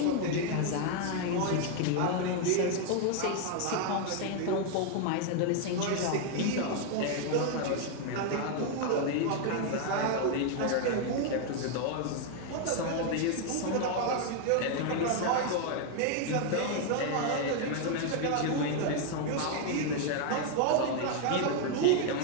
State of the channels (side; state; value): both; different; correlation 0.01